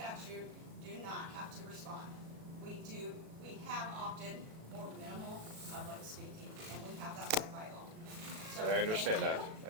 do not have to respond. We have opted for minimal public speaking, and we have that right by law. So, And I understand thank that.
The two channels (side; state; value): left; late; 37 ms